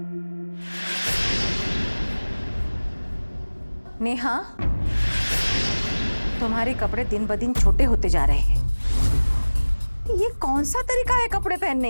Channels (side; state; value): both; inverted; correlation -1.00